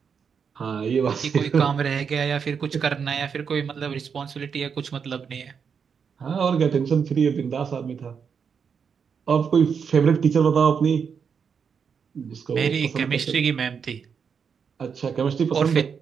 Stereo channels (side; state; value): left; quieter; 6.5 dB